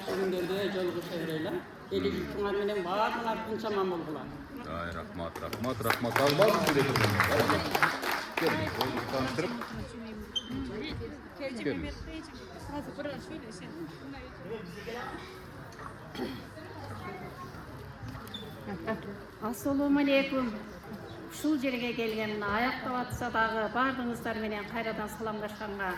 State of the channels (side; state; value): both; identical; correlation 1.00